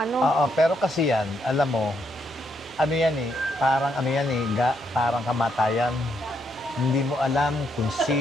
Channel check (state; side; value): normal; both; correlation 0.76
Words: Oo, pero kasi yan, alam mo, parang kamatayan. Hindi mo alam kung